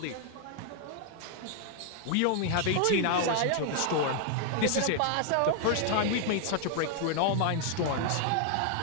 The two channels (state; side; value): different; both; correlation 0.00